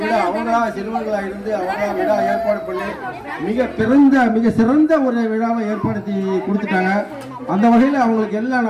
விழா அவங்களா சிறுவர்களா இருந்து அவங்களா விழா ஏற்பாடு பண்ணி மிக சிறந்த ஒரு விழாவை ஏற்படுத்தி கொடுத்துட்டாங்க. அந்த வகையில் அவங்களுக்கு எல்லாம்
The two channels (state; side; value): identical; both; correlation 1.00